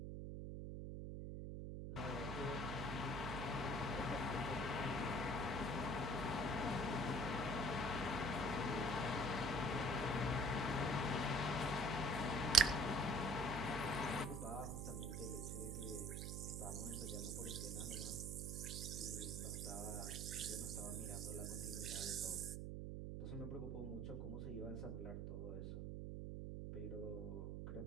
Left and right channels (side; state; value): right; noise; hum, 4 dB below the sound